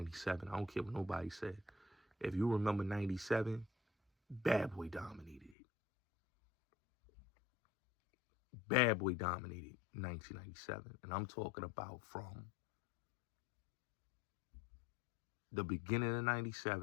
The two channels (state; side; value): drops out; right; at 5.6 s